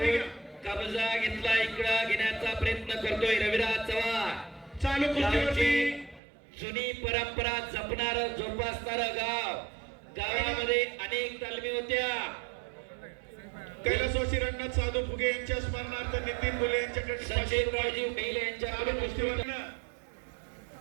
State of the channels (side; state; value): left; drops out; at 6.2 s